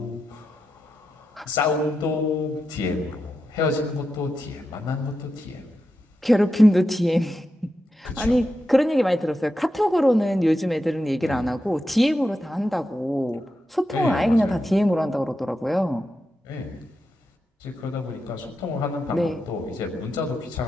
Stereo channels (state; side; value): normal; both; correlation 0.88